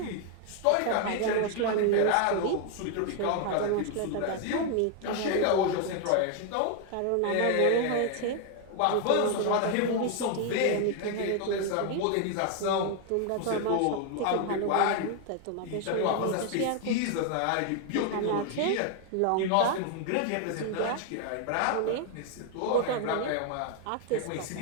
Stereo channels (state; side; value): different; both; correlation 0.00